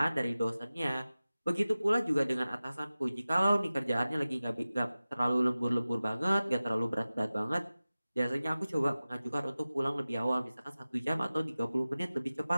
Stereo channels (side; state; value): both; inverted; correlation -0.97